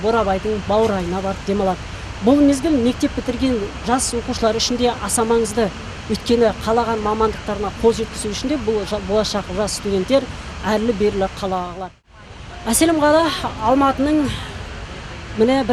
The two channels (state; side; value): identical; both; correlation 1.00